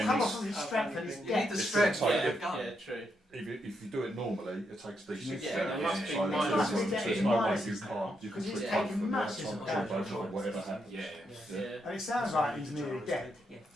come he's- off of his strength and his You need depth. the It's strength gonna to take get a gun. Yeah, true. If you do it normally, it takes decent. Yeah, there must be so minuses. there's no way you can't. You can Because he's switch taking both of them. massive That's damage. both or whatever happens. Yeah. Yeah. And it sounds like he's nearly dead. yeah,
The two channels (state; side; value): normal; both; correlation 0.80